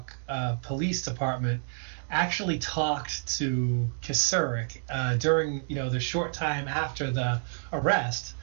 Police Department actually talked to Kasurik during the short time after the arrest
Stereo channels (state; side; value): silent; left; digital silence